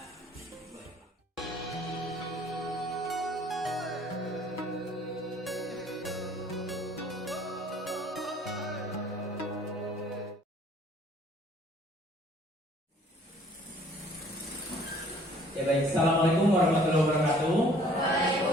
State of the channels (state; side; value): normal; both; correlation 0.56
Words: Boleh. Ya baik, Assalamualaikum warahmatullahi wabarakatuh.